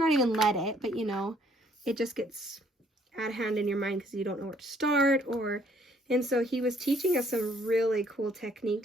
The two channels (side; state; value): both; normal; correlation 0.64